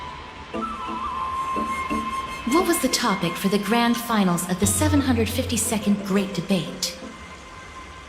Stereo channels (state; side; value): identical; both; correlation 1.00